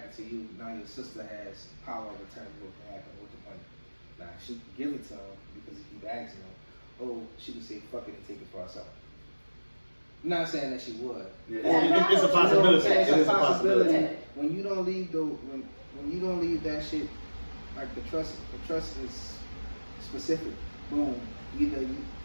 to you, now your sister has power of attorney what can happen with the money. Now she can give it to him because he keep asking him. Oh, she can say fuck it and take it for herself. I'm not saying that she would. Yeah. It's a possibility. It's a possibility. When you don't leave when you don't leave that shit, like the trust is specific. Boom. Either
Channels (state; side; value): inverted; both; correlation -1.00